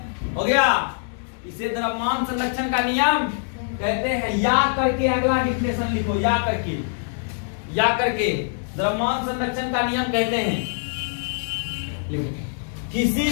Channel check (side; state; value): right; silent; digital silence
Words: हो गया, इसे द्रव्यमान संरक्षण का नियम कहते हैं। या करके अगला डिफिनेशन लिखो, या करके द्रव्यमान संरक्षण का नियम कहते हैं। लिखो, किसी